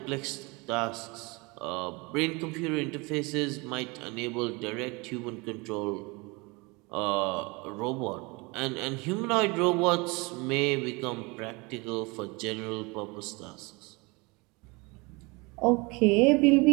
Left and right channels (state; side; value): quieter; left; 26.8 dB